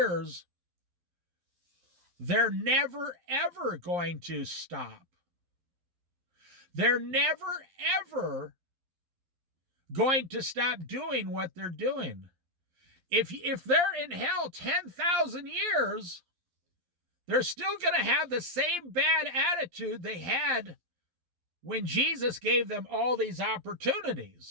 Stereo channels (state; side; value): late; left; 11 ms